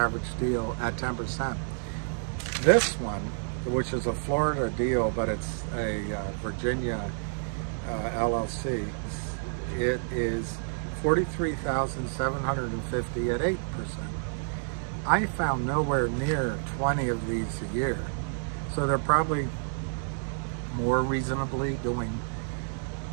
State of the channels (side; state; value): left; silent; 58 dB below the other